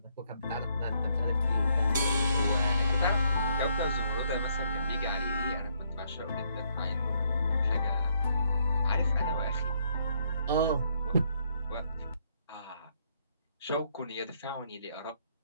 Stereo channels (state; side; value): inverted; both; correlation -0.71